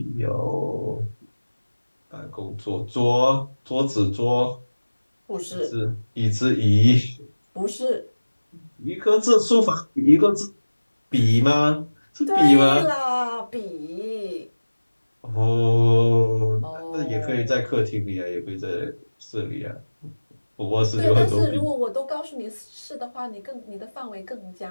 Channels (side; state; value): both; inverted; correlation -1.00